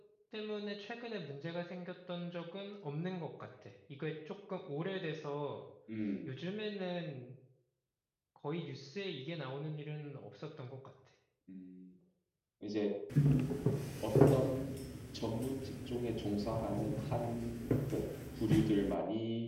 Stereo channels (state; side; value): identical; both; correlation 1.00